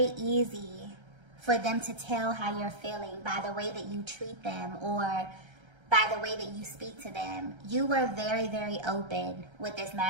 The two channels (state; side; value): late; left; 1.3 ms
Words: easy for them to tell how you're feeling by the way that you treat them or by the way that you speak to them. You were very, very open with this